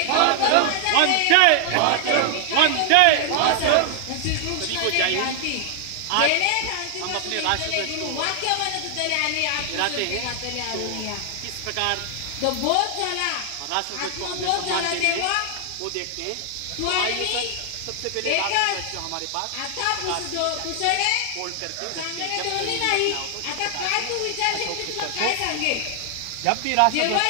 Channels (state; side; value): different; both; correlation 0.00